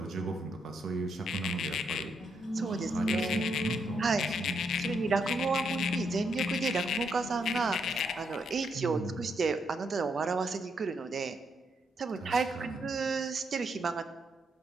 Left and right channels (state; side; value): normal; both; correlation 0.77